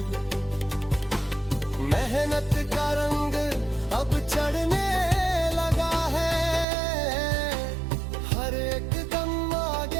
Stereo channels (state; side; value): drops out; left; at 6.7 s